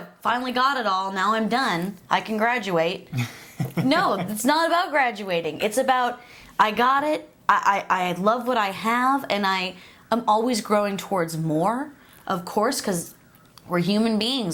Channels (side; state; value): both; identical; correlation 1.00